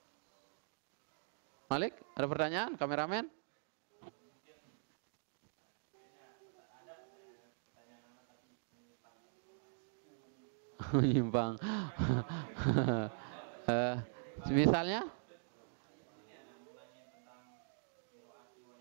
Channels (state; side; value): silent; left; digital silence